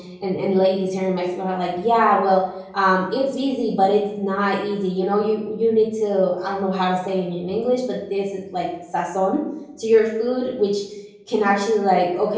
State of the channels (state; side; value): identical; both; correlation 1.00